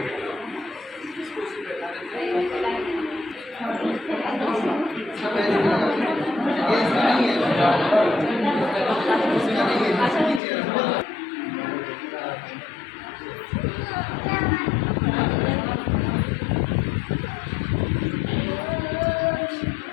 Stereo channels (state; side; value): drops out; right; at 10.4 s